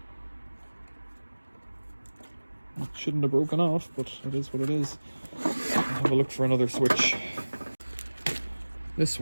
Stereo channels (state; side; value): inverted; both; correlation -1.00